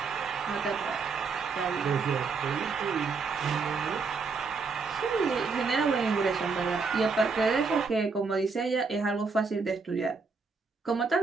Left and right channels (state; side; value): quieter; left; 4.7 dB